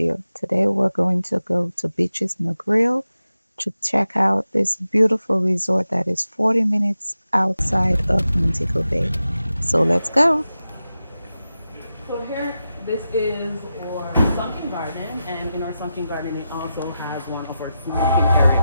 Today we're going to go to Beaches Negril to check out this beautiful resort that is 40 minutes outside of Montego Bay. So let's go. So here, this is our sunken garden, and in our sunken garden, it also has one of our smoking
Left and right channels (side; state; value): both; inverted; correlation -0.91